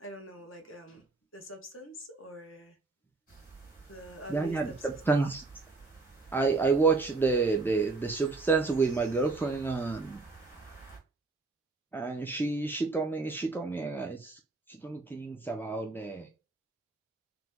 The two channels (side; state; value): left; quieter; 3.7 dB